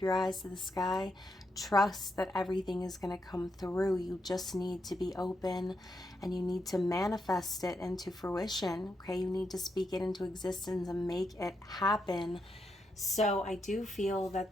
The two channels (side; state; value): both; normal; correlation 0.82